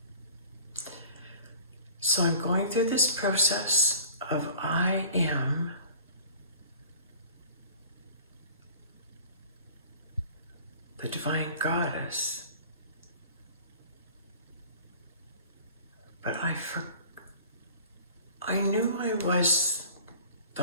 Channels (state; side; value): inverted; both; correlation -0.45